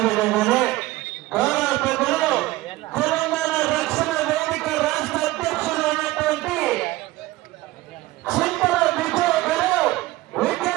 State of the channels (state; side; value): quieter; left; 18.2 dB